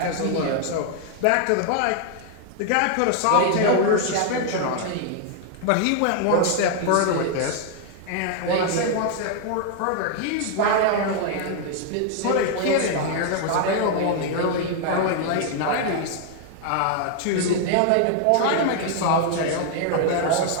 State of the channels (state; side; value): different; both; correlation 0.00